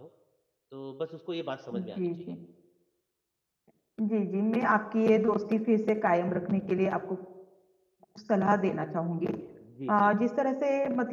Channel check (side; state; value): both; identical; correlation 1.00